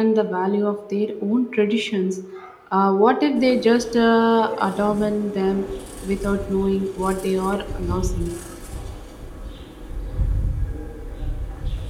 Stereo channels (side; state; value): both; identical; correlation 1.00